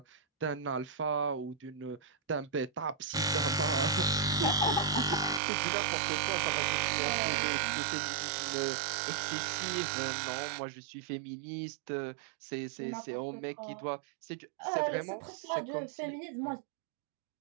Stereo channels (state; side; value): drops out; left; at 5.4 s